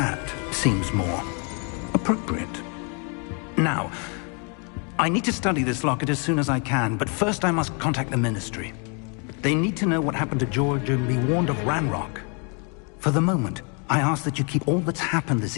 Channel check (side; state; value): right; quieter; 37.5 dB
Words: seems more appropriate. Now, I need to study this locket as soon as I can, but first I must contact the Ministry. They need to know what happened to George and be warned of Ranrock. For the moment, I ask that you keep all that's happened